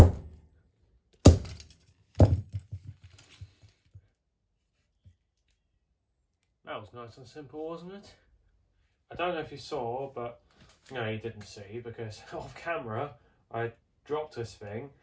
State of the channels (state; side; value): identical; both; correlation 1.00